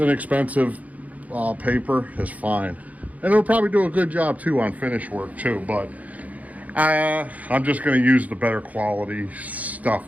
paper is fine. And it'll probably do a good job too on finish work too, but I'm just going to use the better quality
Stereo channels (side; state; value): left; late; 0.073 ms